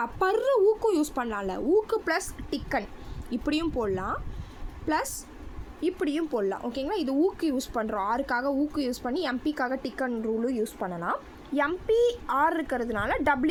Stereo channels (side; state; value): both; identical; correlation 1.00